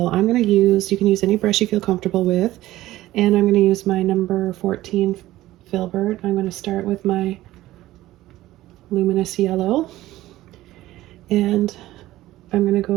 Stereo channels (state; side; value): quieter; left; 15.9 dB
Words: I'm going to use, you can use any brush you feel comfortable with, and I'm going to use my number 14 filbert. I'm going to start with my luminous yellow, and I'm going to